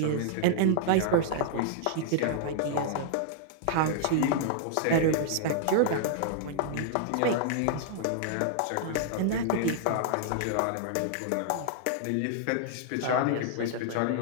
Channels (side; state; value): both; different; correlation -0.01